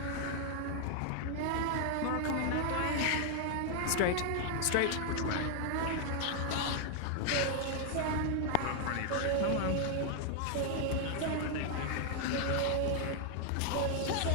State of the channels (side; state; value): both; different; correlation 0.00